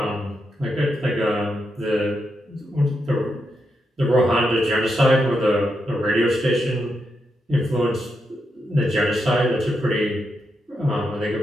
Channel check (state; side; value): normal; both; correlation 0.84